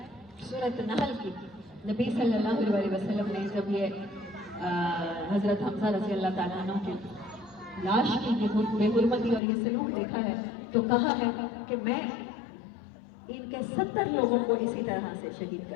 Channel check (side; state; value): right; drops out; at 9.4 s